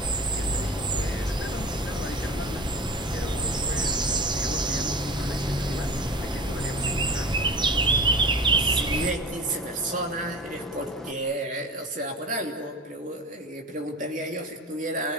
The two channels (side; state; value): both; normal; correlation 0.35